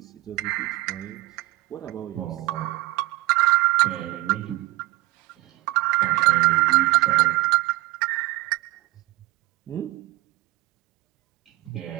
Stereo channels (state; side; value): quieter; left; 20.1 dB